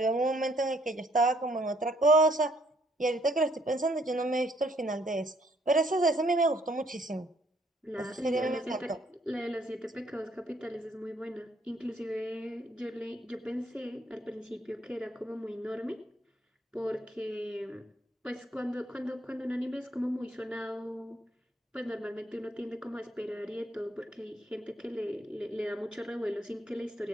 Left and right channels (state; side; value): normal; both; correlation 0.67